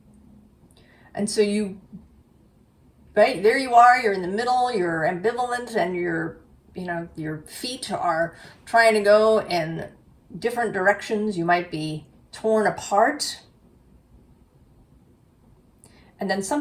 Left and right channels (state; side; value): identical; both; correlation 1.00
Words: And so right there you are, you're in the middle, you're ambivalent, and your feet are trying to go in different directions. You might be torn apart. And then